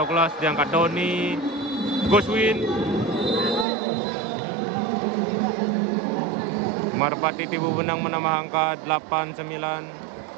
diangkat Doni. Goswin. Merpati Tipu Benang menambah angka 8-9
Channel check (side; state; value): left; drops out; at 3.7 s